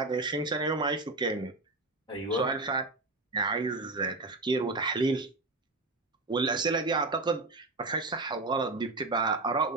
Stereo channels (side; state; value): left; quieter; 3.2 dB